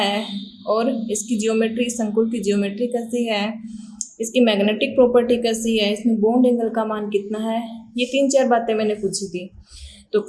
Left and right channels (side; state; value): both; identical; correlation 1.00